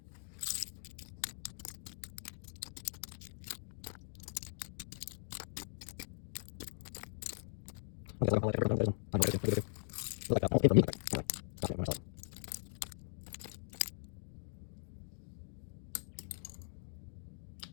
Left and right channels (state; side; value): silent; right; digital silence